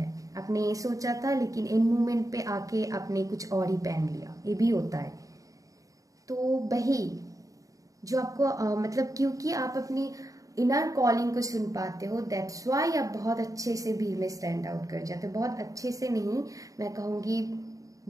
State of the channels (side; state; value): left; late; 0.16 ms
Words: आपने ये सोचा था लेकिन एंड मोमेंट पे आके आपने कुछ और ही पहन लिया, ये भी होता है। तो वही जो आपको मतलब क्योंकि आप अपनी इनर कॉलिंग को सुन पाते हो, दैट्स वाई आप बहुत अच्छे से भीड़ में स्टैंड आउट कर जाते हो, बहुत अच्छे से नहीं, मैं कहूंगी